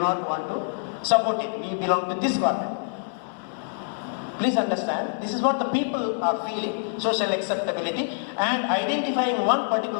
want to support it. We belong to this government. Please understand, this is what the people are feeling, social acceptability and identifying one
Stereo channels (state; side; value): silent; right; 61 dB below the other